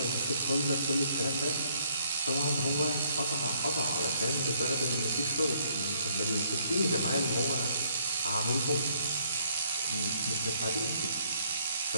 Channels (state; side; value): inverted; both; correlation -0.67